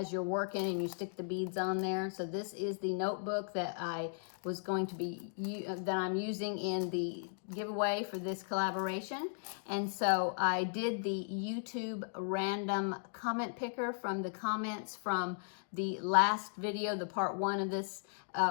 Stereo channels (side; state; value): right; silent; digital silence